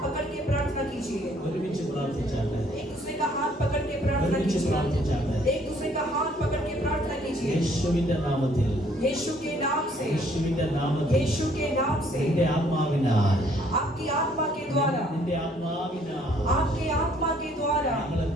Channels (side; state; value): both; normal; correlation 0.63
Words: पकड़ के प्रार्थना कीजिए ഒരുമിച്ച് പ്രാർത്ഥിച്ചാട്ടെ. एक दूसरे का हाथ पकड़ के प्रार्थना ഒരുമിച്ച് कीजिए പ്രാർത്ഥിച്ചാട്ടെ. एक दूसरे का हाथ पकड़ के प्रार्थना कीजिए യേശുവിന്റെ നാമത്തിൽ, यीशु के नाम से യേശുവിന്റെ നാമത്തിൽ यीशु के नाम से നിന്റെ ആത്മാവിനാൽ, आपकी आत्मा के द्वारा നിന്റെ ആത്മാവിനാൽ आपके आत्मा के द्वारा ഞങ്ങളെ